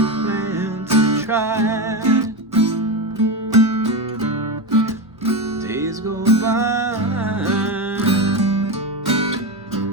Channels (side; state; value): both; normal; correlation 0.16